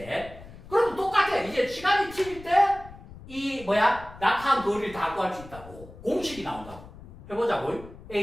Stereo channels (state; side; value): noise; left; rumble, 17 dB below the sound